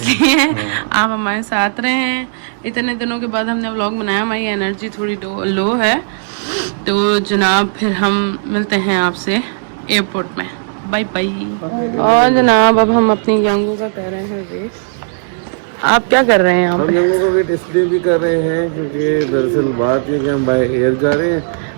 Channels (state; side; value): silent; left; digital silence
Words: आप हमारे साथ रहे हैं। इतने दिनों के बाद हमने व्लॉग बनाया, हमारी एनर्जी थोड़ी लो है। तो जनाब फिर हम मिलते हैं आपसे एयरपोर्ट में। Bye bye. और जनाब अब हम अपनी यंगू का कर रहे हैं वेट। आप क्या कर रहे हैं यहाँ पे? हम यंगू का वेट इसलिए भी कर रहे हैं क्योंकि दरअसल बात ये कि हम बाय एयर जा रहे हैं,